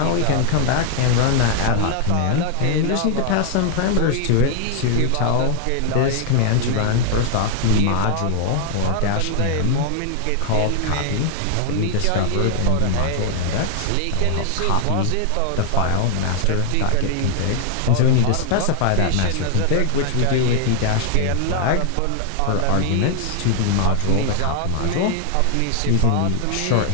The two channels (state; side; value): different; both; correlation 0.00